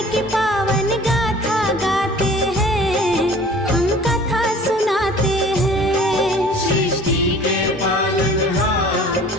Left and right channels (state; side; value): normal; both; correlation 0.47